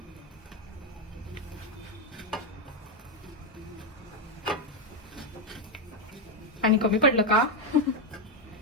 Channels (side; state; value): both; normal; correlation 0.04